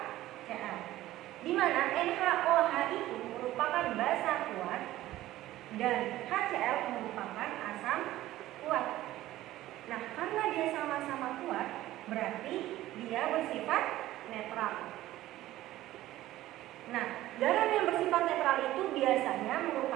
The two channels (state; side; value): quieter; left; 15.3 dB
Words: Di mana NaOH itu merupakan basa kuat dan HCl merupakan asam kuat. Nah, karena dia sama-sama kuat, berarti dia bersifat netral. Nah, garam yang bersifat netral itu biasanya